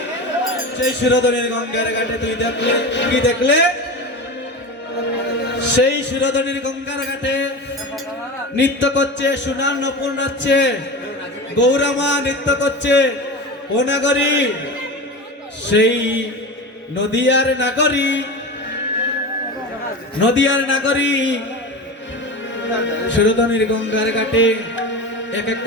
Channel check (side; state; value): both; normal; correlation 0.27